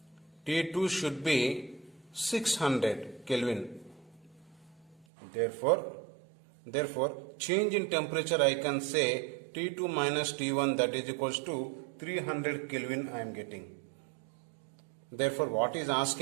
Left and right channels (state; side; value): drops out; left; at 5.1 s